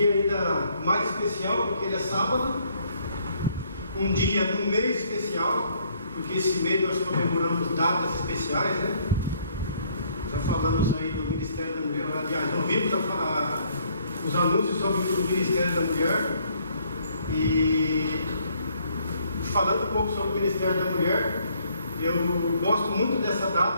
ainda mais especial, porque ele é sábado, um dia de um mês especial, porque esse mês nós comemoramos datas especiais, né? Já falamos aí do Ministério da Mulher, aliás, ouvimos os anúncios sobre o Ministério da Mulher, e falando um pouco sobre o Ministério da Mulher, eu gosto muito dessa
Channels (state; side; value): inverted; both; correlation -0.66